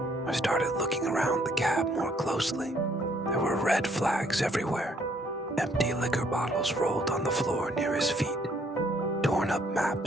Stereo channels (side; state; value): both; normal; correlation 0.66